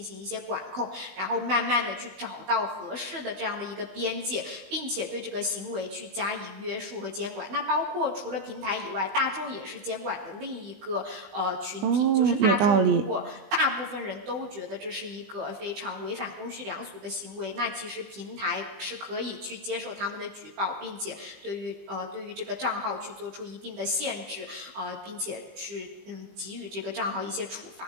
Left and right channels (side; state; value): left; late; 20 ms